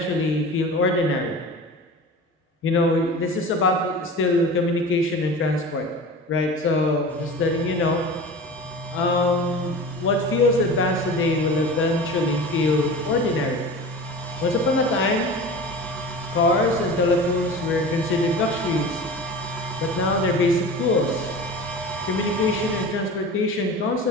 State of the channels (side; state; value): both; normal; correlation 0.34